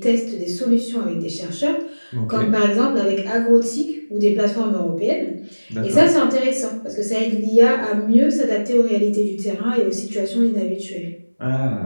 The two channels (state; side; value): inverted; both; correlation -1.00